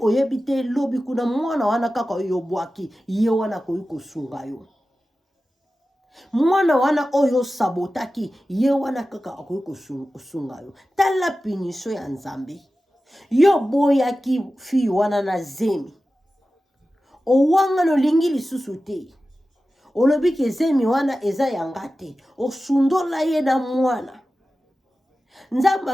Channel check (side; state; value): both; normal; correlation 0.94